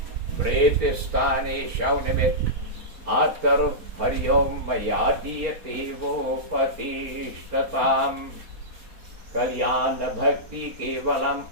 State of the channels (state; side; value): late; left; 4.2 ms